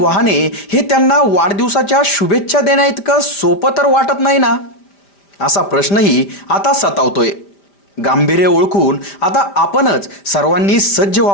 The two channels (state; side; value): late; right; 5.0 ms